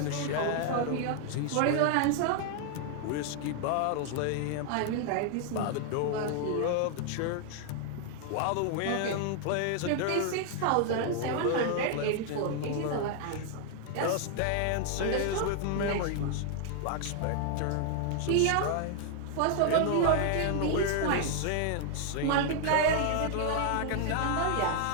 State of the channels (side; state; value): both; different; correlation 0.00